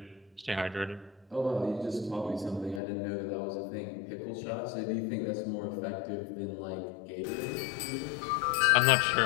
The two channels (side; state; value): right; drops out; at 2.8 s